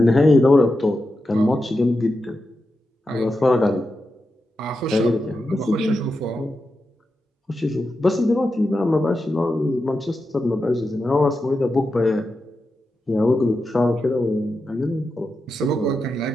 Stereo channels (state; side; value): normal; both; correlation 0.89